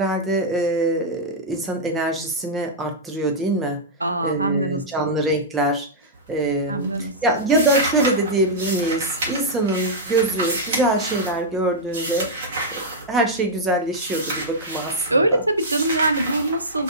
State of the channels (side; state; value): both; normal; correlation -0.08